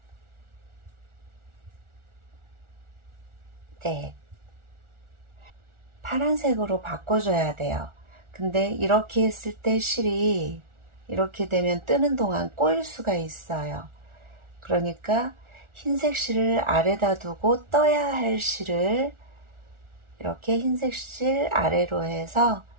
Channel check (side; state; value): left; late; 1.4 ms